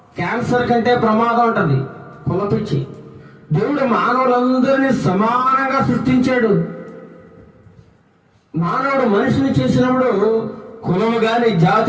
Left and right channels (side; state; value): both; identical; correlation 1.00